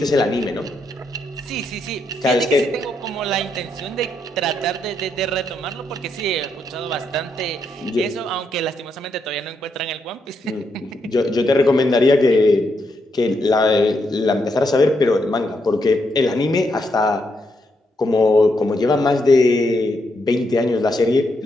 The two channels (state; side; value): normal; both; correlation 0.79